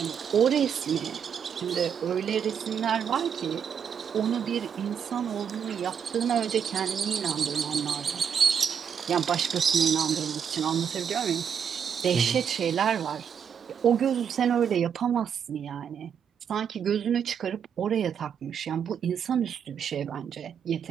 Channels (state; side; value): quieter; left; 7.6 dB